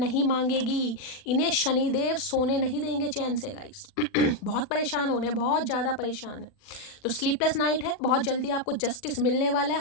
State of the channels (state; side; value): late; right; 40 ms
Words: मांगेगी, इन्हें शनिदेव सोने नहीं देंगे चैन से गाइस। बहुत परेशान हो रहे हैं, बहुत ज़्यादा परेशान है। तो स्लीपलेस नाइट है, बहुत जल्दी आपको जस्टिस मिलने वाला है।